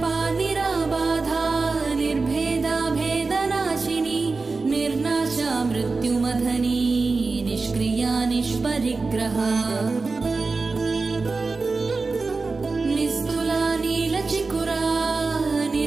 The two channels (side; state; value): left; quieter; 4.0 dB